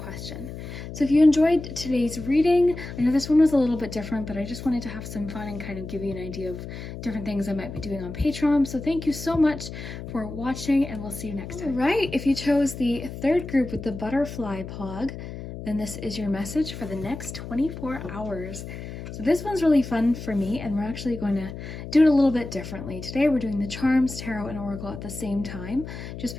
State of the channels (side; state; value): left; noise; hum, 10 dB below the sound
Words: So if you enjoyed today's reading, I know this one was a little bit different, but I just wanted to have some fun and kind of give you an idea of different things I might be doing on Patreon. So thank you so much for watching, and we'll see you next time. All right, if you chose the third group with the butterfly pog, then this is your message for the next 24 hours. So this one's really fun for me, and we're actually going to do it a little bit differently. Today we're doing the Charms, Tarot, and Oracle at the same time, just